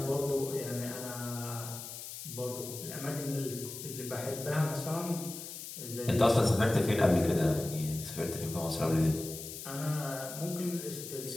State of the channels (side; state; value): left; noise; hiss, 10 dB below the sound